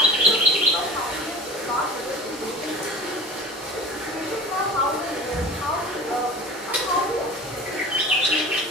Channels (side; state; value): both; normal; correlation 0.38